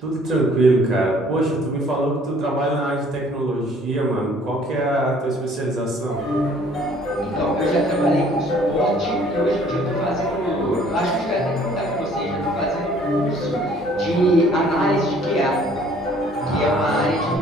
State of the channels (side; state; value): both; normal; correlation 0.57